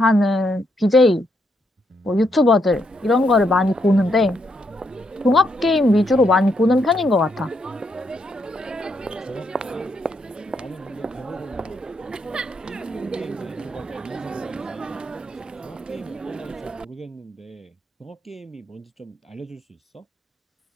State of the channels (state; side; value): normal; both; correlation 0.77